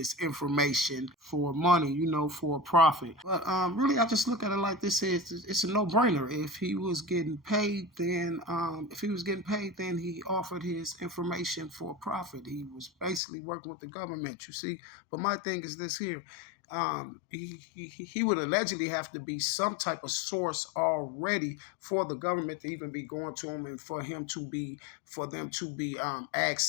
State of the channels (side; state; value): right; drops out; at 13.2 s